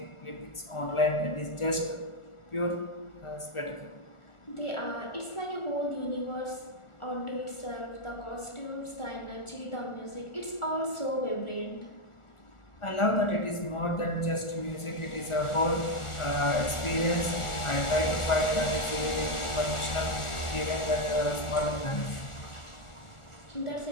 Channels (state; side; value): late; right; 1.4 ms